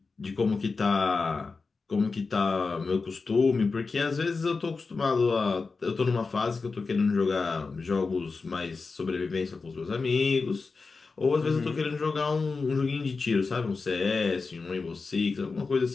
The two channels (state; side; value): quieter; right; 4.3 dB